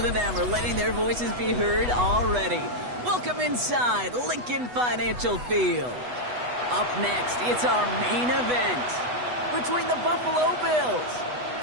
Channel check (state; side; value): late; left; 8.1 ms